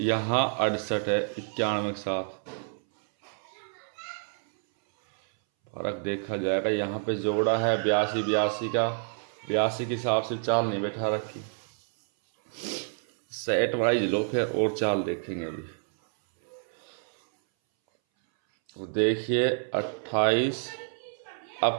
68 है, 91 के साथ फर्क देखा जाएगा। यहाँ पे जोड़ा है 82 का, 82 के हिसाब से चाल नहीं बैठा रखी। सेट वाइज लो फिर और चाल देखेंगे अभी। तो देखिए 28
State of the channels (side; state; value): left; silent; 59 dB below the other